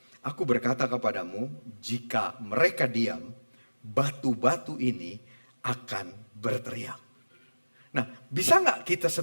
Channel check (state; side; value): inverted; both; correlation -1.00